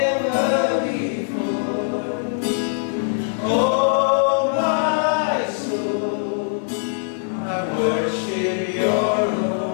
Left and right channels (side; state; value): right; silent; digital silence